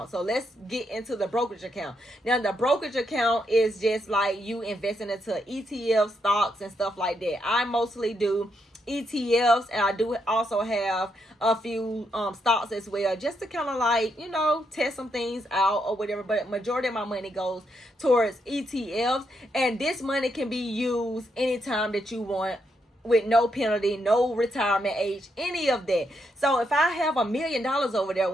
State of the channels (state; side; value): normal; both; correlation 0.79